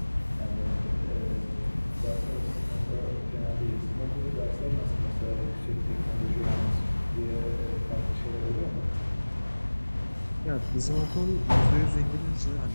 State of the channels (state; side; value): inverted; both; correlation -1.00